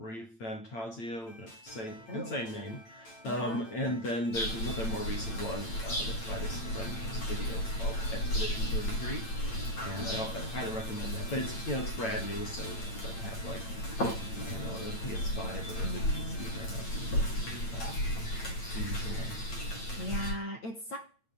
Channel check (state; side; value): late; right; 8.9 ms